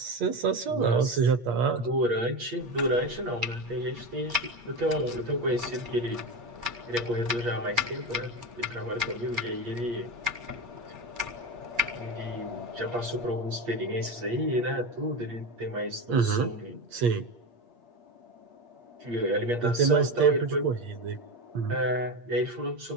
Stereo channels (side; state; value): left; late; 8.5 ms